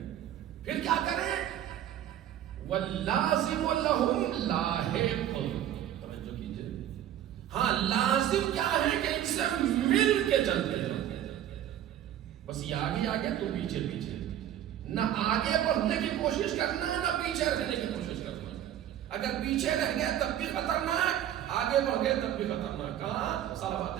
پھر کیا کریں؟ واللازم لہم لاحق، توجہ کیجئے، ہاں لازم کیا ہے کہ ان سے مل کے چلتے ہیں، بس یہ آگے آگے تو پیچھے پیچھے، نہ آگے بڑھنے کی کوشش کرنا نہ پیچھے رہنے کی کوشش کرنا۔ اگر پیچھے رہ گئے تب بھی خطرناک، آگے بڑھ گئے تب بھی خطرناک۔ کہاں؟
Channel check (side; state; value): left; quieter; 11.3 dB